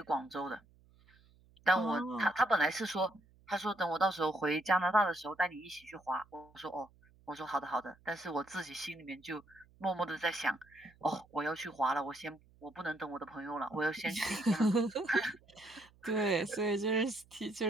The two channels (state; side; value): noise; right; hum, 29 dB below the sound